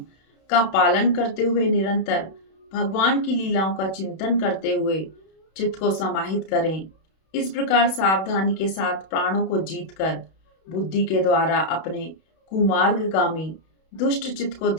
का पालन करते हुए निरंतर भगवान की लीलाओं का चिंतन करते हुए चित्त को समाहित करें। इस प्रकार सावधानी के साथ प्राणों को जीतकर बुद्धि के द्वारा अपने कुमार्गगामी दुष्ट चित्त को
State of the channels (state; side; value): late; right; 31 ms